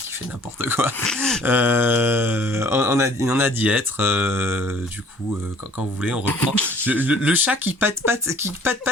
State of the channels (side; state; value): both; normal; correlation 0.55